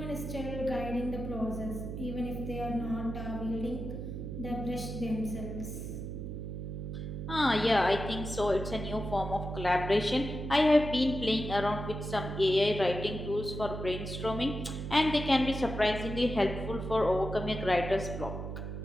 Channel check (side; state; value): right; noise; hum, 6 dB below the sound